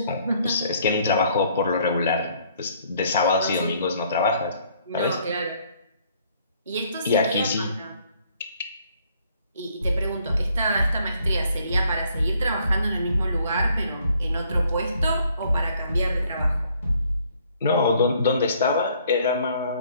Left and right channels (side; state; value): both; inverted; correlation -0.64